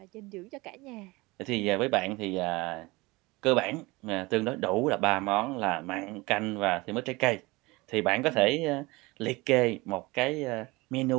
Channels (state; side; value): quieter; left; 22.9 dB